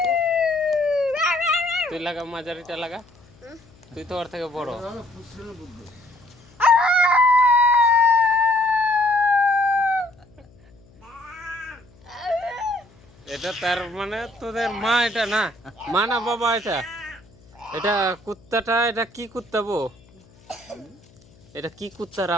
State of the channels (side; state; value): left; noise; hum, 28 dB below the sound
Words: তুই লাগা, মাঝারিটা লাগা, তুই তো ওর থেকে বড়। এটা তার মানে তোদের মা, এটা না মা না বাবা, এটা এটা কুত্তাটা, এটা কি কুত্তা বো? এটা কি কুত্তার